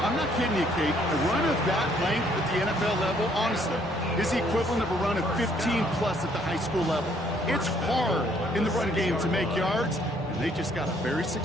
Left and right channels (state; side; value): normal; both; correlation 0.65